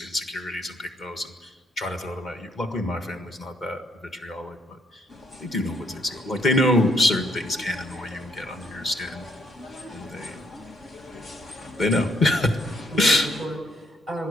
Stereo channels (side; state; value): both; normal; correlation 0.70